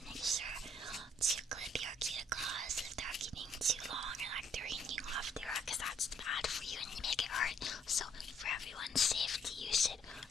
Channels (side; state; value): both; normal; correlation 0.67